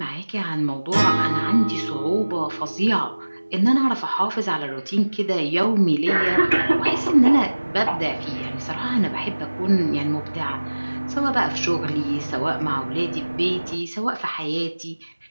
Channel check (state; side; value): inverted; both; correlation -1.00